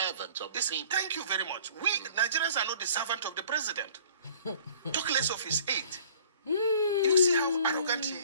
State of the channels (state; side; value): inverted; both; correlation -0.51